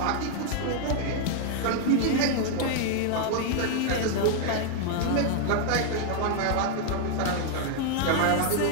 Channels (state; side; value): different; both; correlation 0.00